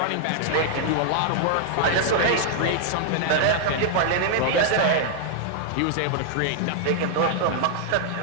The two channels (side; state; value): both; different; correlation -0.01